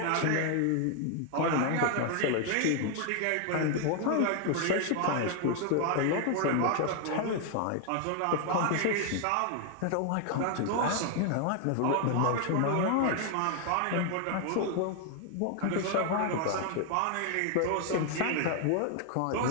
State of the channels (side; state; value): both; different; correlation 0.00